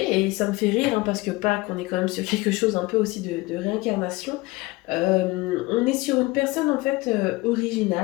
ça me fait rire, hein, parce que Pâques, on est quand même sur quelque chose un peu aussi de réincarnation. On est sur une personne en fait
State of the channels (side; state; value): right; quieter; 21.7 dB